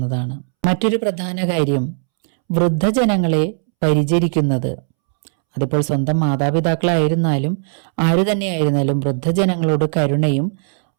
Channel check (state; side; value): silent; left; 67 dB below the other